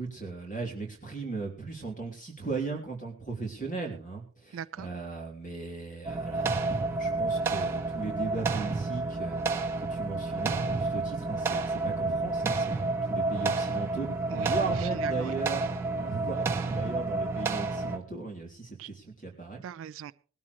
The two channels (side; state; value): left; quieter; 3.2 dB